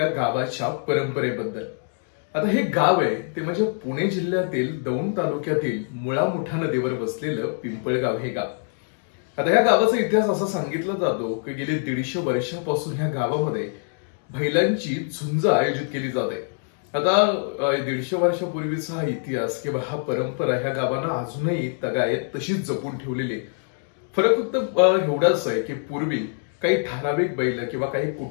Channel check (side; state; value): right; silent; 62 dB below the other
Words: गावाच्या परंपरेबद्दल। आता हे गाव आहे ते म्हणजे पुणे जिल्ह्यातील दौंड तालुक्यातील मुळा मुठा नदीवर बसलेलं पिंपळगाव हे गाव। आता या गावाचा इतिहास असा सांगितला जातो की गेली 150 वर्षांपासून ह्या गावामध्ये बैलांची झुंज आयोजित केली जाते। आता 150 वर्षापूर्वीचा हा इतिहास किंवा हा परंपरा ह्या गावांना अजूनही तगायत तशीच जपून ठेवलेली। फरक फक्त एवढाच आहे की पूर्वी काही ठराविक बैल किंवा काही